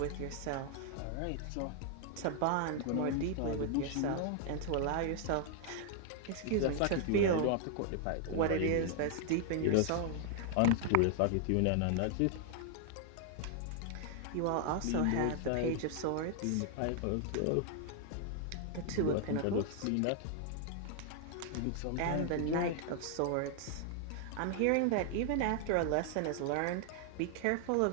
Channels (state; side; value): different; both; correlation 0.00